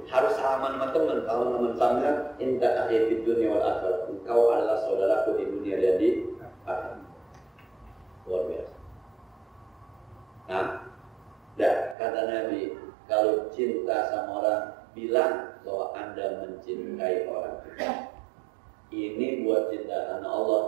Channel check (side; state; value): left; drops out; at 12.0 s